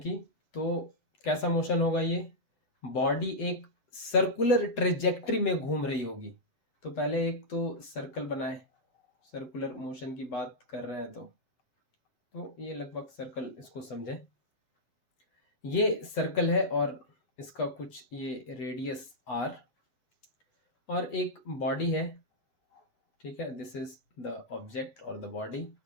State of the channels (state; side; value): late; right; 8.0 ms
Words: तो कैसा मोशन होगा ये? बॉडी एक सर्कुलर ट्रेजेक्ट्री में घूम रही होगी। तो पहले एक तो सर्कल बनाए, सर्कुलर मोशन की बात कर रहे हैं तो ये लगभग सर्कल इसको समझें। ये सर्कल है और इसका कुछ ये रेडियस r और एक बॉडी है। ठीक है, दिस इज द ऑब्जेक्ट और द बॉडी